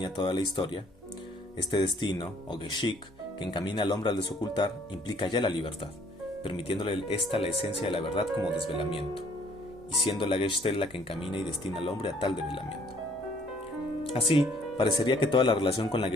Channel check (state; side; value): normal; both; correlation 0.61